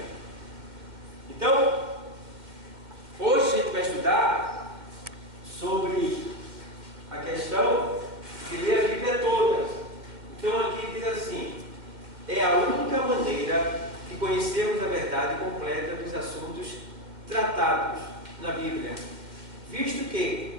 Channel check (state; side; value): late; left; 2.1 ms